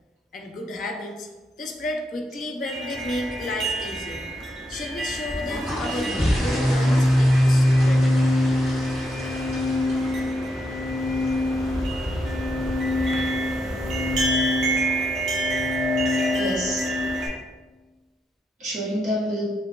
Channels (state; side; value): normal; both; correlation 0.81